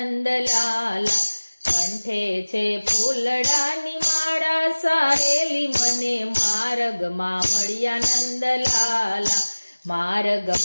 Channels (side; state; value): both; inverted; correlation -1.00